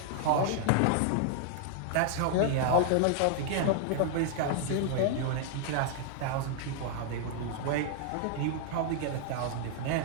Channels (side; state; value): both; different; correlation 0.00